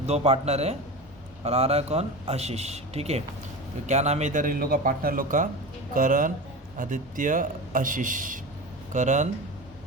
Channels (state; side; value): normal; both; correlation 0.28